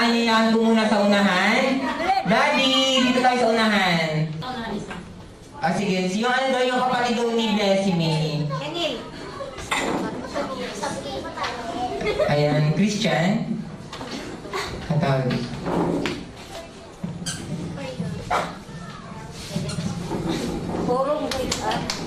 po muna sa unahan. Daddy, dito tayo sa unahan. Sige. Yung ano daw yung kapatid daw ni Blessy May? Ayan, Christian. Ang tawag.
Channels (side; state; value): both; identical; correlation 1.00